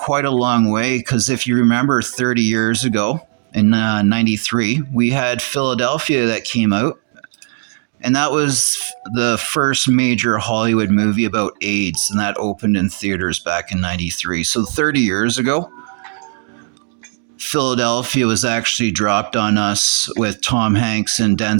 a long way because if you remember 30 years ago in 93, we had Philadelphia that came out. And that was the first major Hollywood movie about AIDS, and that opened in theaters back in 93. So 30 years ago, Philadelphia was actually dropped on us with Tom Hanks and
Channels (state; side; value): silent; left; 58 dB below the other